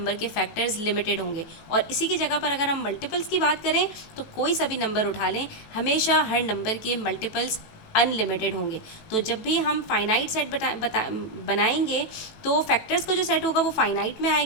के फैक्टर्स लिमिटेड होंगे। और इसी की जगह पर अगर हम मल्टीपल्स की बात करें तो कोई सा भी नंबर उठा लें, हमेशा हर नंबर के मल्टीपल्स अनलिमिटेड होंगे। तो जब भी हम फाइनाइट सेट बनाएंगे तो फैक्टर्स का जो सेट होगा वो फाइनाइट में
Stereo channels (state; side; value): late; right; 18 ms